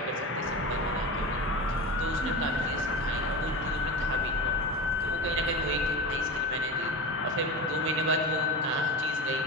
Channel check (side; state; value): both; normal; correlation 0.26